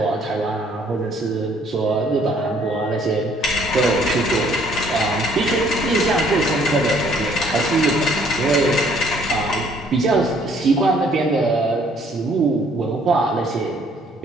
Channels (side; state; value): both; normal; correlation 0.62